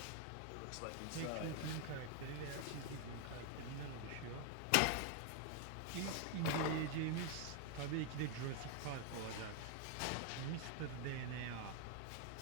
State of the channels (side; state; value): both; different; correlation 0.00